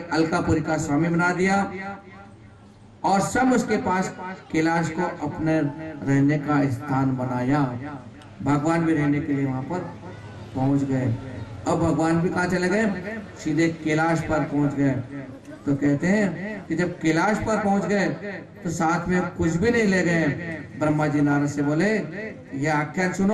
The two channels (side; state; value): both; identical; correlation 1.00